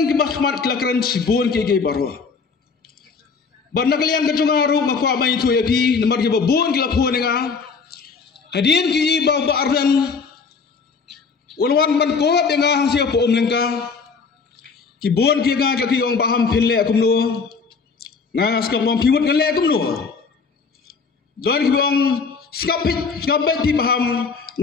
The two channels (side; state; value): right; quieter; 5.1 dB